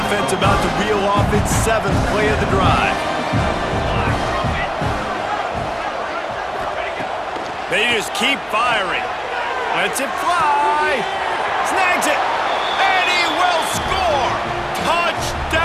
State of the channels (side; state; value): both; identical; correlation 1.00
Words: offense about to reel off its 7th play of the drive. They just keep firing. Lets it fly. Snags it. And he will score.